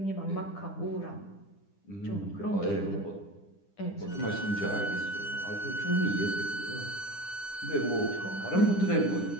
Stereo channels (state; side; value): late; right; 10 ms